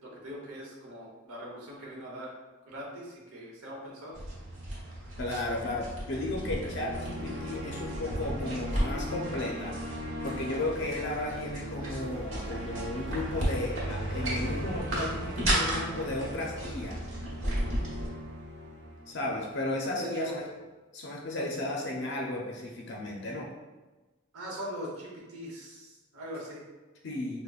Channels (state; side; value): normal; both; correlation 0.38